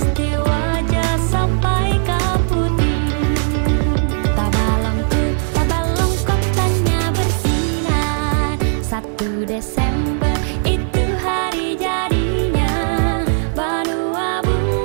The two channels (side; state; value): left; silent; digital silence